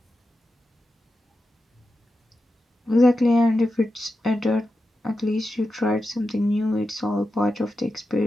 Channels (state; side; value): normal; both; correlation 0.90